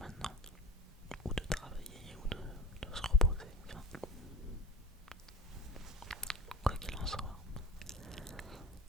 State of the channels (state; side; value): normal; both; correlation 0.37